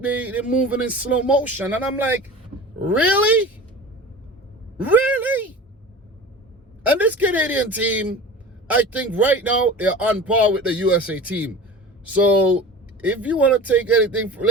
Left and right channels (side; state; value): both; normal; correlation 0.36